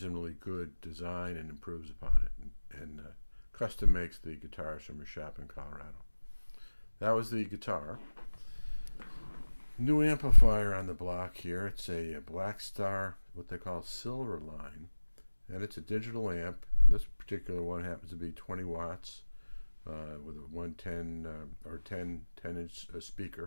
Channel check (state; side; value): inverted; both; correlation -1.00